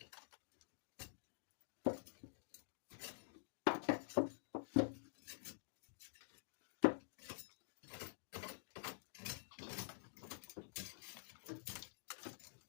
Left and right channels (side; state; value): right; silent; digital silence